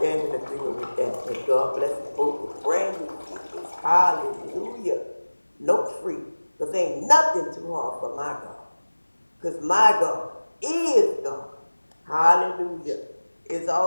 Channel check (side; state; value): both; inverted; correlation -1.00